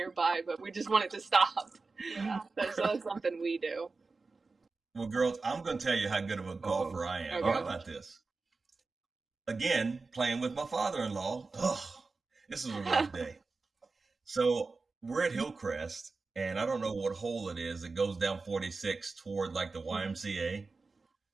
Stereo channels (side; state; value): left; quieter; 4.0 dB